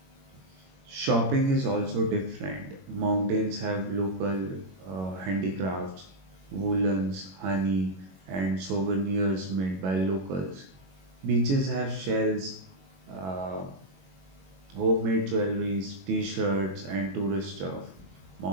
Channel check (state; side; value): late; left; 21 ms